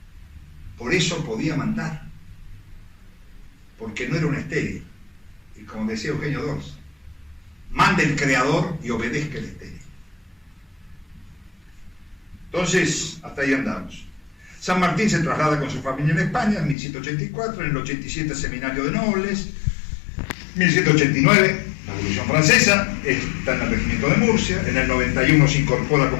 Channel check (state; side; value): drops out; right; at 16.8 s